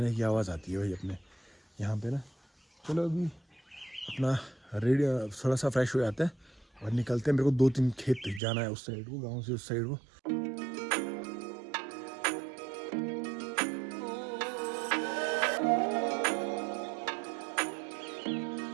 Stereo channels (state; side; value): drops out; left; at 8.4 s